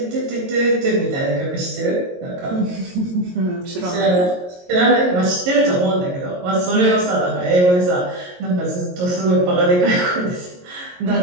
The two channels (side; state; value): left; late; 22 ms